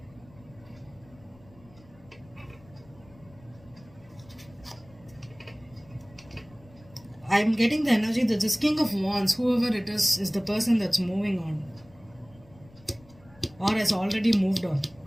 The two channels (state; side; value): noise; left; rumble, 25 dB below the sound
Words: I'm getting the energy that this King of Wands, whoever it is the person that's moving on, or has already moved on.